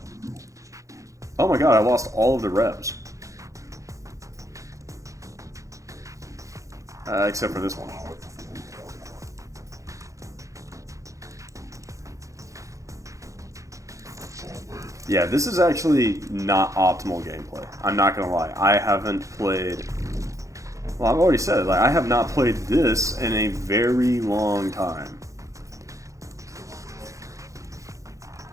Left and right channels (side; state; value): left; late; 0.15 ms